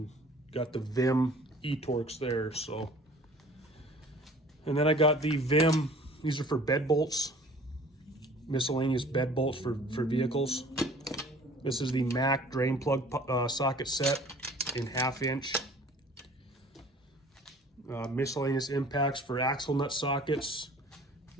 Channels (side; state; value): both; normal; correlation 0.49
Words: got the Vim e-Torx there. So, and then I got the Vim. These are for bed bolts, miscellaneous bed bolts for vehicles. This is the Mac drain plug socket set in 1/2 inch. Miscellaneous impacts for axle nut sockets.